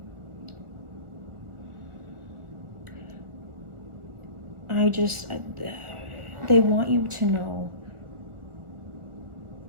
They want you to know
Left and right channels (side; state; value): left; late; 1.4 ms